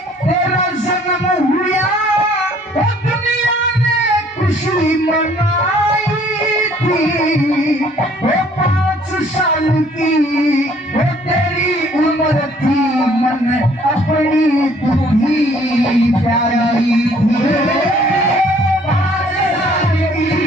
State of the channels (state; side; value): normal; both; correlation 0.59